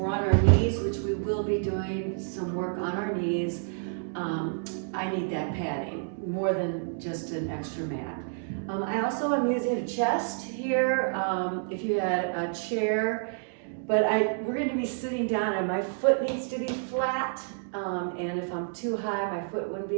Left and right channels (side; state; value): left; silent; digital silence